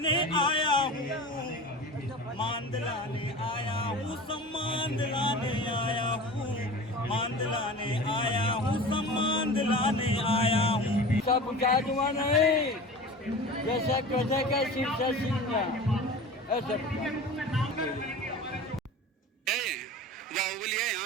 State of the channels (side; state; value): both; normal; correlation 0.35